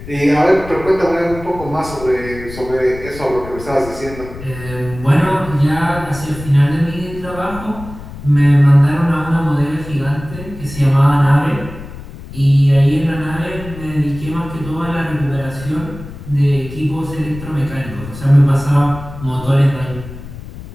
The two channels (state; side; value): noise; left; rumble, 13 dB below the sound